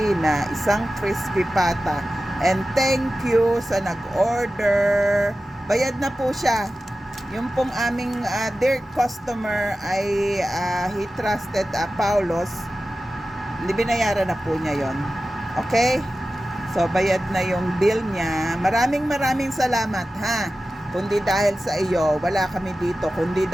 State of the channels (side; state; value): both; normal; correlation 0.94